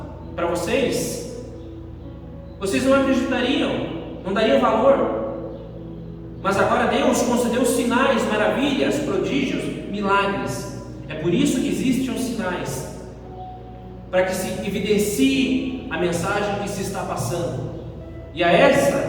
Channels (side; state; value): both; identical; correlation 1.00